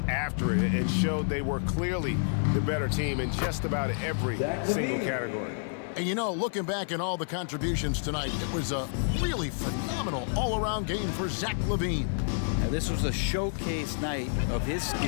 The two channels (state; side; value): silent; right; 58 dB below the other